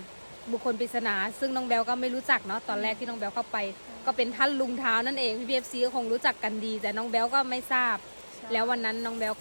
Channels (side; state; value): both; inverted; correlation -1.00